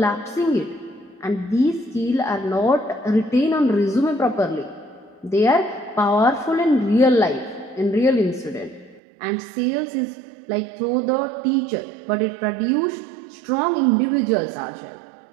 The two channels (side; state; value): left; drops out; at 9.0 s